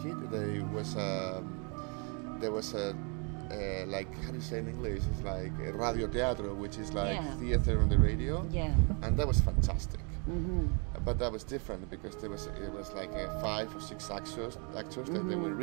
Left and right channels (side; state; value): left; quieter; 35.2 dB